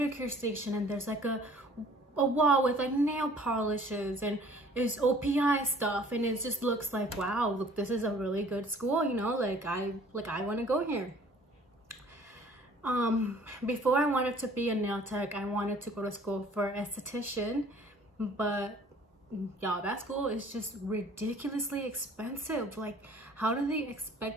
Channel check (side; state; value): both; normal; correlation 0.53